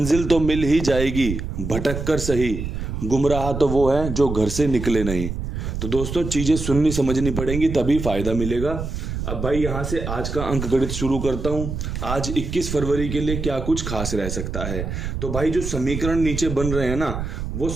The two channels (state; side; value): noise; right; rumble, 5 dB below the sound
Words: तो मिल ही जाएगी, भटक कर सही, गुमराह तो वो है जो घर से निकले नहीं। तो दोस्तों चीजें सुननी समझनी पड़ेंगी, तभी फायदा मिलेगा। अब भाई यहां से आज का अंक गणित शुरू करता हूं। आज 21 फरवरी के लिए क्या कुछ खास रह सकता है। तो भाई जो समीकरण नीचे बन रहे हैं ना, वो